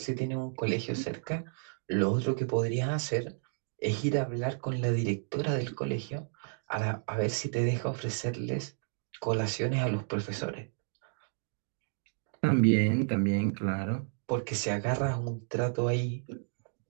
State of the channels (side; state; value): left; silent; digital silence